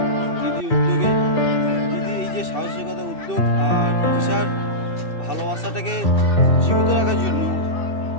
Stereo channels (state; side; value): late; right; 2.6 ms